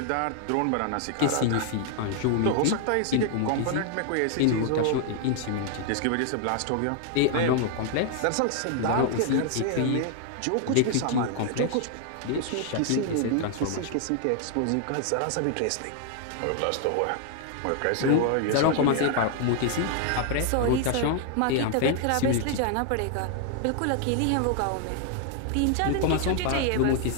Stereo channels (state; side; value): different; both; correlation 0.00